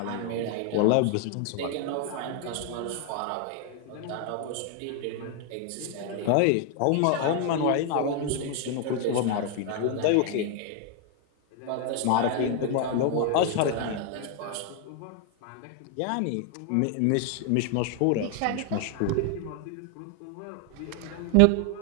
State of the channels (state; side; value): different; both; correlation 0.00